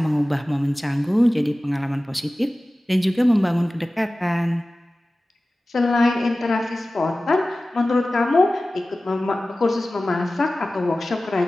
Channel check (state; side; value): normal; both; correlation 0.96